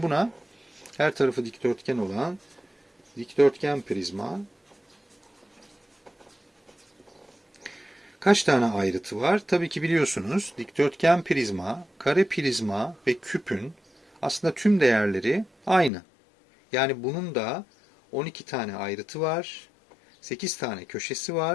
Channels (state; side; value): drops out; right; at 15.9 s